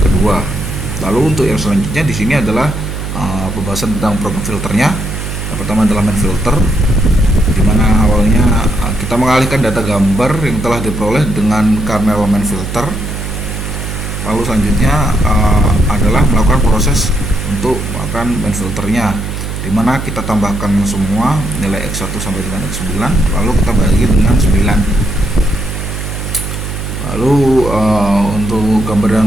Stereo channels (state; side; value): noise; right; hum, 6 dB below the sound